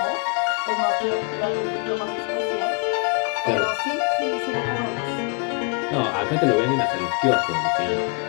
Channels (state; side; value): quieter; right; 31.4 dB